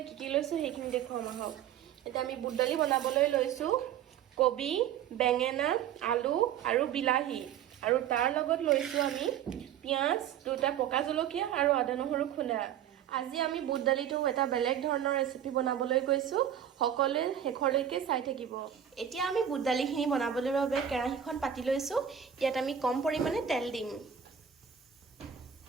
কি কি লৈছো সেইখিনি দেখুৱাম আহক। এতিয়া আমি বুট দালি বনাবলৈ লৈছো কবি, বেঙেনা, আলু আৰু বিলাহী, আৰু তাৰ লগত লৈছো আমি পিঁয়াজ, দুটা পকা জলকীয়া আৰু আদা নহৰু খুন্দা। আজি আমি বুট দালিটো এটা বেলেগ ধৰণৰ ৰেচিপি বনাবলৈ গৈছো। সকলোৱে শেষলৈকে চাই থাকিব। এতিয়া আমি বুট দালিখিনি বনাবলৈ বাবে কেৰাহীখন পাতি লৈছো। ইয়াত আমি কম পৰিমাণে তেল দিম।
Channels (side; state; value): left; quieter; 9.4 dB